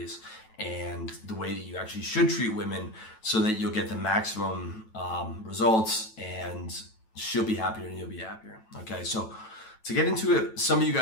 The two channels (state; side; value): late; right; 9.1 ms